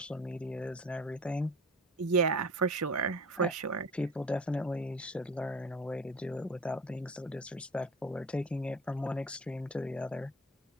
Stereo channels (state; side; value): normal; both; correlation 0.38